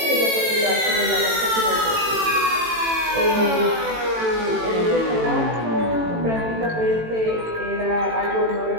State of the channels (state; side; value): late; left; 18 ms